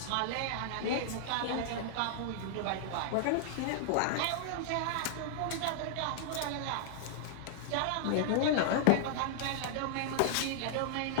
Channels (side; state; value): both; different; correlation -0.01